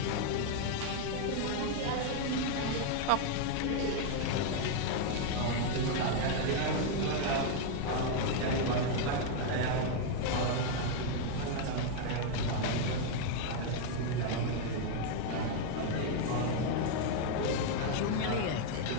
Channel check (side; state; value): both; different; correlation 0.00